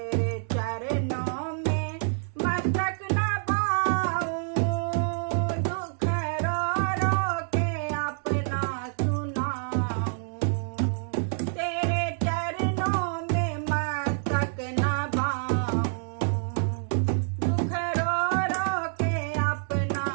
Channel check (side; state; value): left; silent; 60 dB below the other